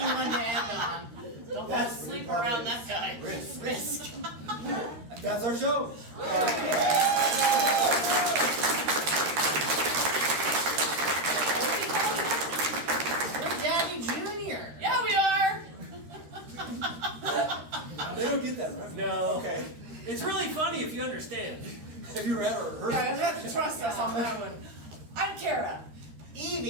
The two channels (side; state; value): left; late; 13 ms